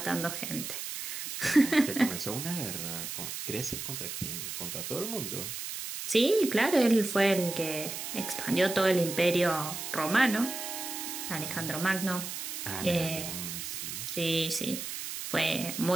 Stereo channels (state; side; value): noise; right; hiss, 6 dB below the sound